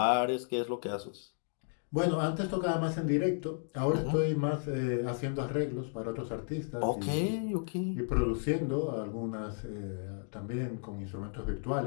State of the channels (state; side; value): silent; right; 55 dB below the other